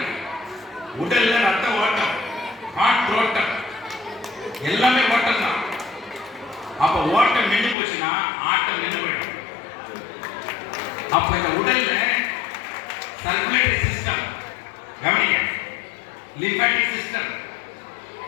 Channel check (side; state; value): right; drops out; at 7.8 s